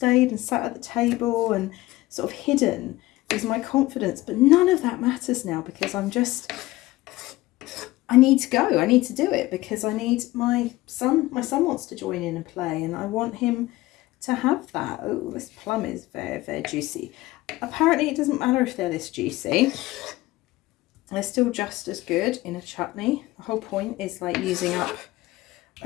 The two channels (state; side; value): quieter; right; 18.3 dB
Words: and sat at the table and sort of hidden with my confidence. But none of that matters now, because I'm just... I need to go. I need to do it because I need my son wants to join in and play, and I want him to have that. Oh, this plum is very, very juicy. Apparently it doesn't matter if they're this juicy. They're still just as good in a chutney. The whole point is like using up